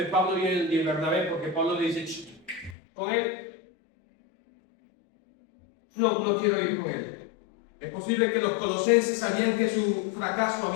Pablo y Bernabé, porque Pablo le dice, con él, no quiero ir con él. Es posible que los colosenses sabían que su fracaso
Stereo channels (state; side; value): drops out; right; at 2.8 s